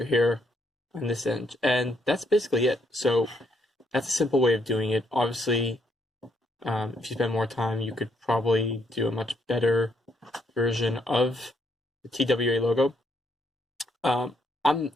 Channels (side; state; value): both; normal; correlation 0.73